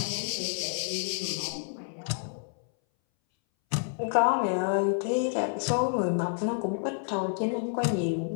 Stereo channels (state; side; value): silent; right; 59 dB below the other